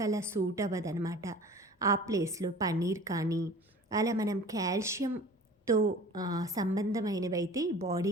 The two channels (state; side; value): normal; both; correlation 0.43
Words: అలా సూట్ అవ్వదనమాట. ఆ ప్లేస్లో పన్నీర్ కానీ అలా మనం కాల్షియంతో సంబంధమైనవైతే